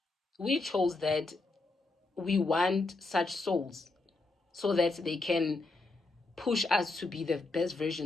We chose that we want such souls so that they can push us to be the best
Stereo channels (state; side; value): quieter; right; 3.3 dB